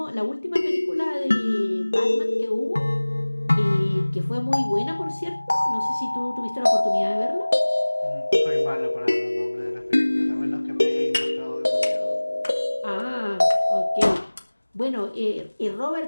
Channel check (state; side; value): inverted; both; correlation -1.00